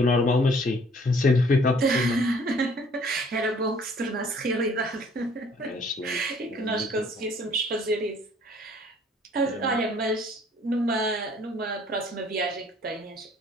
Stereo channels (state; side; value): normal; both; correlation 0.57